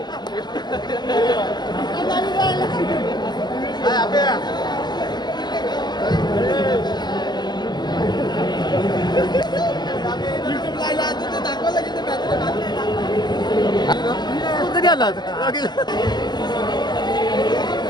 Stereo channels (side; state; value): right; late; 0.21 ms